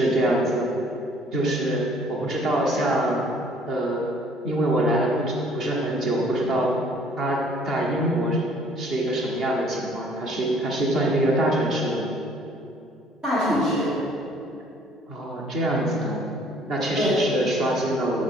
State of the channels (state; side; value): normal; both; correlation 0.58